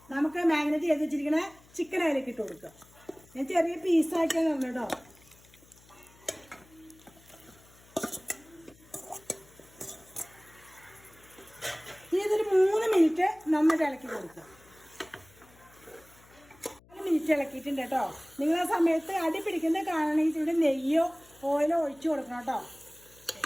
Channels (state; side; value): noise; left; hum, 27 dB below the sound